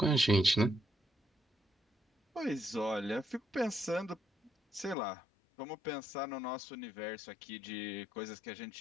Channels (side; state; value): right; drops out; at 5.0 s